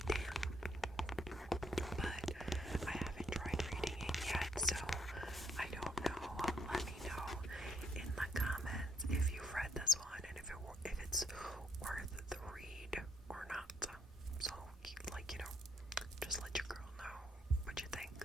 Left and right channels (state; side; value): normal; both; correlation 0.69